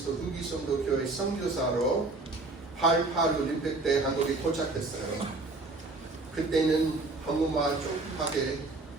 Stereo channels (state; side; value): quieter; left; 3.3 dB